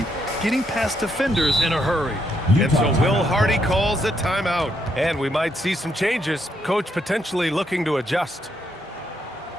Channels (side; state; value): both; normal; correlation 0.76